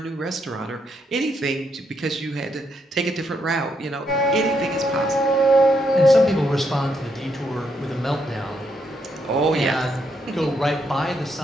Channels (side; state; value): both; normal; correlation 0.77